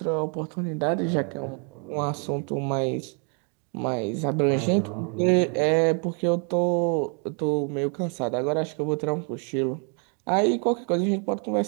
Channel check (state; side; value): quieter; left; 39.8 dB